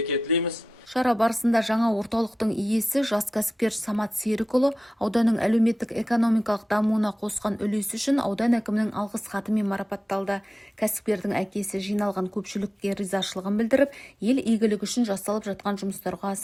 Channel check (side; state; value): both; normal; correlation 0.94